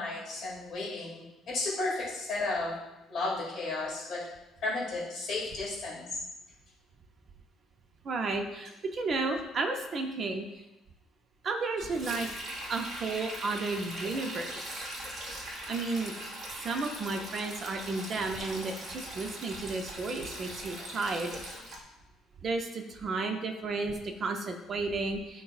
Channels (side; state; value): both; normal; correlation 0.68